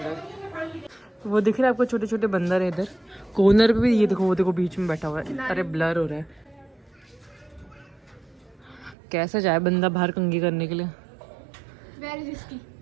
वो दिख रहे हैं आपको, छोटे छोटे बंदर है इधर कॉर्नर पे भी। ये देखो, वो देखो बीच में बैठा हुआ है। अरे ब्लर हो रहा है, कैसे जाए बंदा बाहर कंघी करने के लिए। वेरी रिस्की,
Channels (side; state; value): left; drops out; at 9.0 s